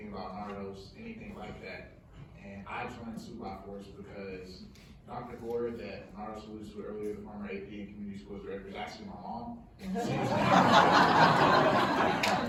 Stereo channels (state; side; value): identical; both; correlation 1.00